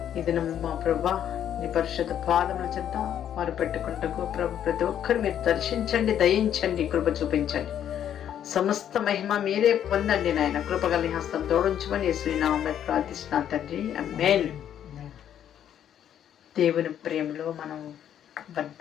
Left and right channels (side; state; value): right; quieter; 10.0 dB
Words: ఇది మా ప్రభా నీ పరిశుద్ధ పాదముల చెంత వారు పెట్టుకుంటూ ప్రభు ప్రతి ఒక్కరు మీరు దర్శించండి, దయించండి, కృప చూపించండి. సమస్త మహిమ మీరే పొందండి నాయన. కృపగల హస్తం తోడించమని యేసునామములో ప్రార్థిస్తున్నాను తండ్రి, ఆమేన్. దేవుని ప్రేమలో మనం